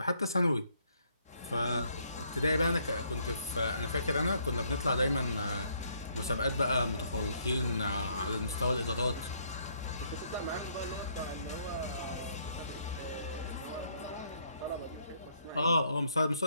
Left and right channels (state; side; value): inverted; both; correlation -0.69